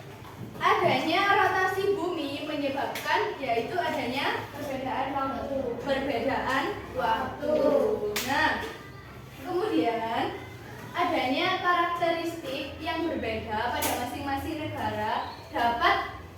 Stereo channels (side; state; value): both; identical; correlation 1.00